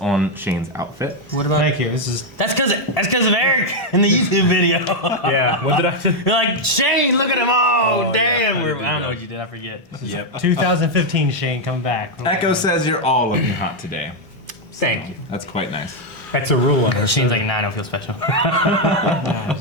Shane's outfit. What about? Thank you. This is That's because of Eric in the YouTube video. Yeah. What did I do? You're like, Shane, look at him. Oh, damn. yeah, I I did don't know that. what you did. I forget. Yep. 2015 Shane coming back. Echo says you're all looking hot today. Thank you. That's quite nice. That's a rule on us. Shane's like, nah, I don't feel special.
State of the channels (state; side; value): normal; both; correlation 0.01